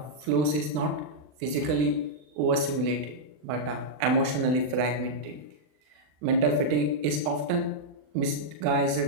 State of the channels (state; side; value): late; left; 39 ms